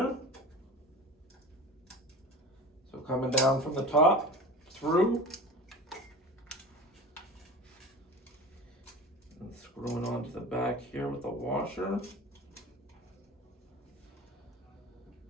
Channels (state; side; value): normal; both; correlation 0.34